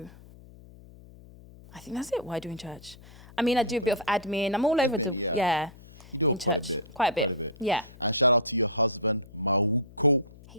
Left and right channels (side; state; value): left; noise; hum, 21 dB below the sound